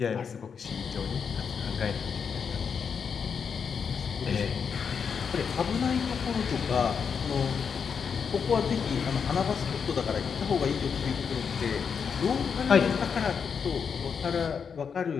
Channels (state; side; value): quieter; right; 6.4 dB